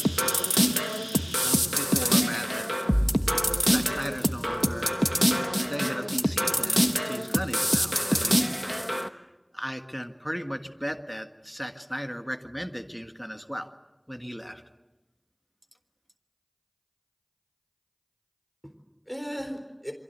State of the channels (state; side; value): identical; both; correlation 1.00